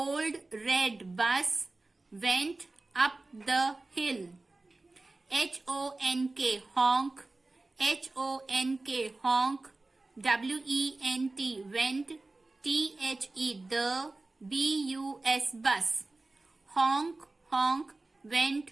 red bus went up the hill. HONK, honk. HONK, honk. WENT, went. THE, the. BUS, bus. Honk, honk, went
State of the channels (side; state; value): left; quieter; 3.1 dB